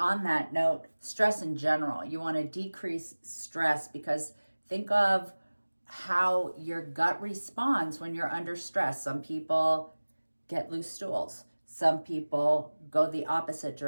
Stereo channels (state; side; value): inverted; both; correlation -1.00